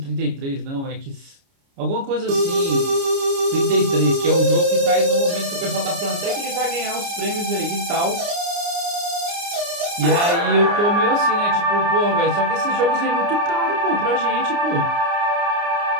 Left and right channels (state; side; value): late; left; 29 ms